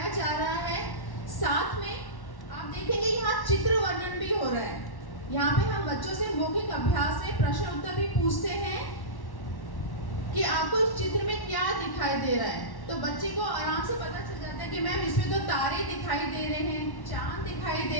जा रहा है। साथ में आप देखेंगे यहाँ चित्र वर्णन भी हो रहा है। यहाँ पे हम बच्चों से मौखिक अभ्यास में प्रश्न उत्तर भी पूछते हैं कि आपको इस चित्र में क्या दिखाई दे रहा है। तो बच्चे को आराम से पता चल जाता है कि मैम इसमें तो तारे दिखाई दे रहे हैं, चांद दिखाई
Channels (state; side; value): late; right; 1.1 ms